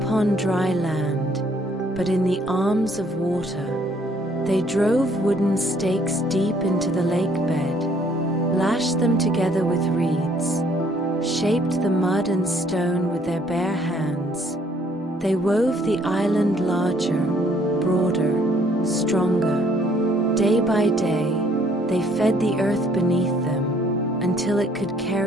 dry land, but in the arms of water. They drove wooden stakes deep into the lake bed, lashed them together with reeds, shaped the mud and stone with their bare hands. They wove the island larger, broader, stronger. Day by day, they fed the earth beneath them until it could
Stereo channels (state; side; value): normal; both; correlation 0.63